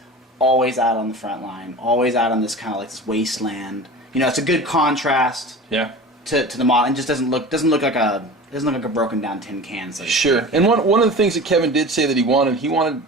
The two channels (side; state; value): both; normal; correlation 0.35